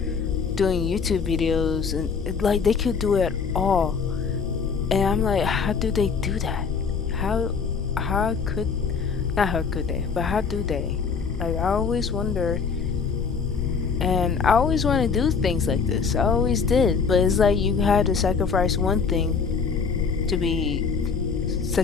doing YouTube videos, and like they could do it all, and I'm like, how do they do that? How could not how could they, but how do they? Like, I always wonder, and I always want to do things like this. I always did, but it's like you had to sacrifice one thing to be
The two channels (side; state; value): right; quieter; 5.6 dB